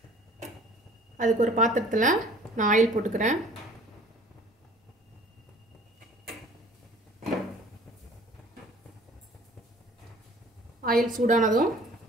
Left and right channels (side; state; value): both; normal; correlation 0.50